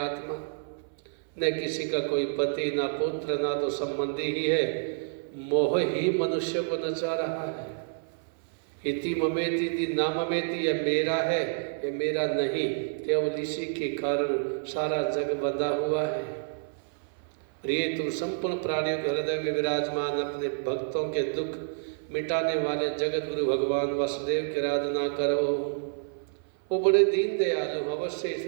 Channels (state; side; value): silent; left; 59 dB below the other